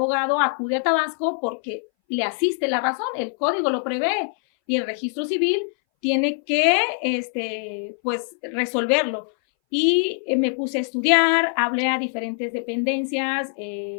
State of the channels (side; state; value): right; silent; 61 dB below the other